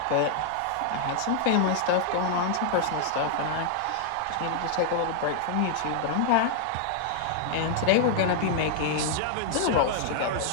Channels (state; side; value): different; both; correlation -0.01